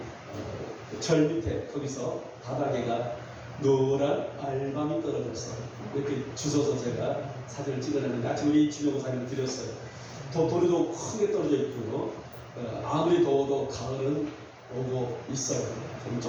절 밑에 거기서 바닥에가 노란 알밤이 떨어져서 이렇게 주워서 제가 사진을 찍어냈는데 아침 우리 주명 사진을 드렸어요. 돌이도 크게 떨어져 있고요. 아무리 더워도 가을은 오고 있어요.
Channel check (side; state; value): both; identical; correlation 1.00